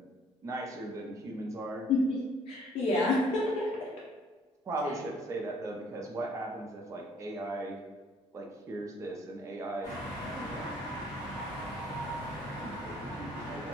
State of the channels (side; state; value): both; normal; correlation 0.60